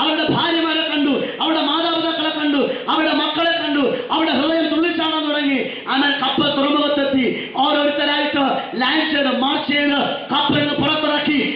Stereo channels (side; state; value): both; identical; correlation 1.00